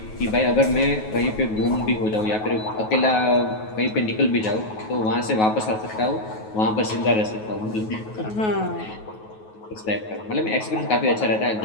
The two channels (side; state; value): right; late; 9.3 ms